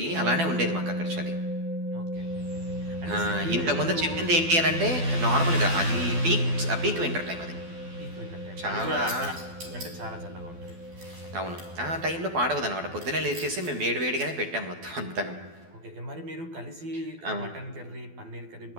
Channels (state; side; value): late; left; 12 ms